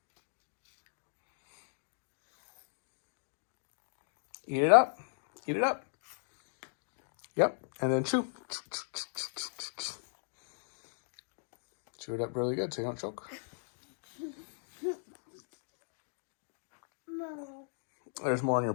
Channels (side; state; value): right; silent; digital silence